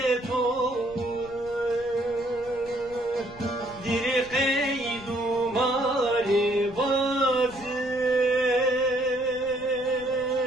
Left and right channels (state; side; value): noise; left; rumble, 20 dB below the sound